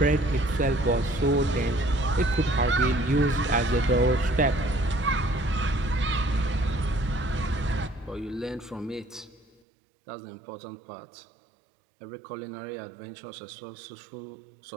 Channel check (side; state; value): left; drops out; at 9.6 s